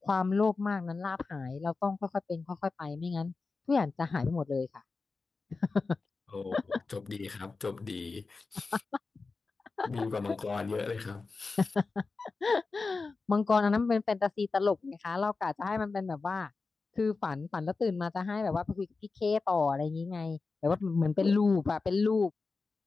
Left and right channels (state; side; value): quieter; right; 4.1 dB